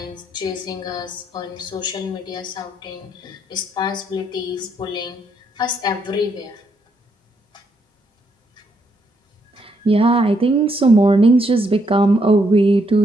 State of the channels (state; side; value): normal; both; correlation 0.75